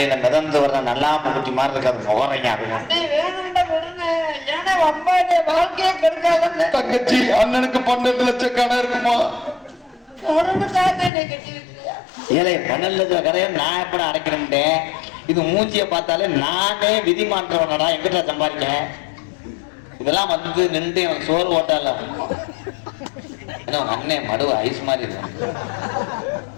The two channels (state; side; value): drops out; right; at 11.1 s